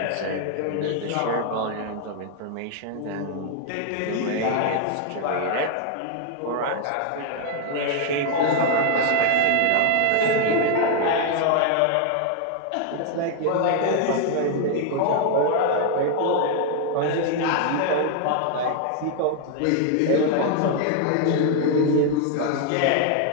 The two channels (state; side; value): different; both; correlation 0.00